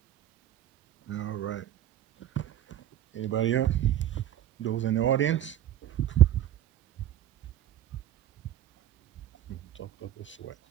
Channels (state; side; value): quieter; left; 11.8 dB